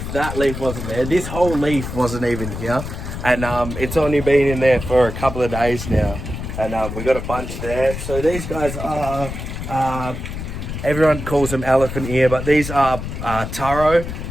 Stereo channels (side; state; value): left; noise; rumble, 7 dB below the sound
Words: that leaf wasn't there. This whole leaf wasn't even here. And it's only been in there for a couple of days now. And we got a bunch there. So these guys are, everyone calls them elephant ear, but these are taro,